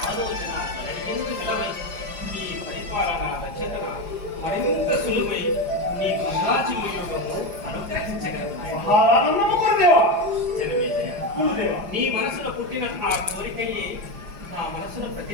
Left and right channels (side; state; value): left; late; 4.9 ms